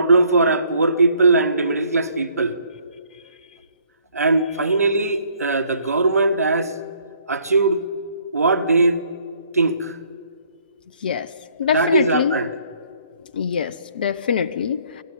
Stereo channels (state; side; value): inverted; both; correlation -0.63